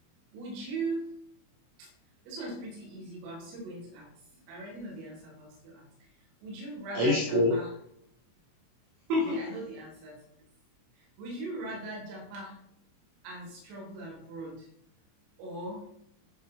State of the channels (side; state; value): left; late; 24 ms